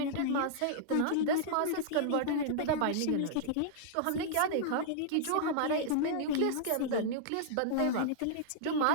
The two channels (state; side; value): different; both; correlation -0.02